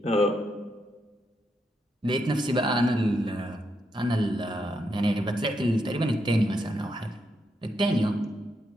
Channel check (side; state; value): both; normal; correlation 0.81